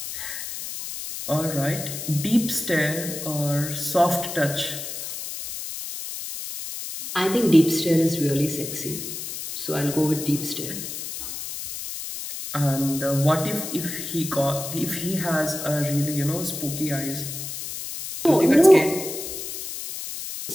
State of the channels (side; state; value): left; noise; hiss, 7 dB below the sound